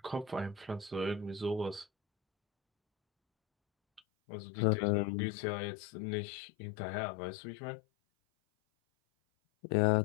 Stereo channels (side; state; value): right; drops out; at 4.0 s